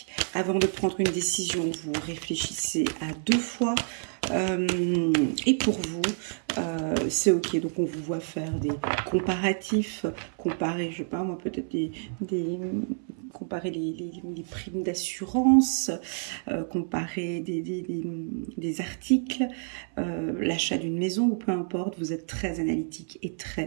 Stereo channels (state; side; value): silent; left; 59 dB below the other